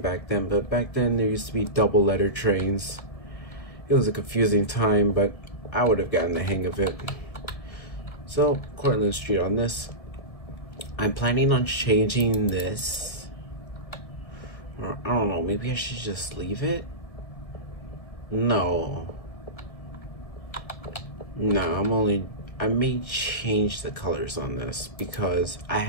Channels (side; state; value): right; late; 1.7 ms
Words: back then, but back then there used to be double letter trains. It was a confusing time, but I would have gotten the hang of it. So, Cortlandt Street on this. I'm planning on changing this. Or, I don't know, maybe I should just leave it? No, I may change the colors on this because I